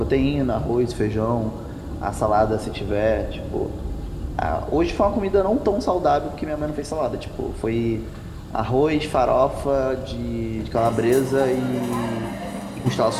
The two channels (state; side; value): identical; both; correlation 1.00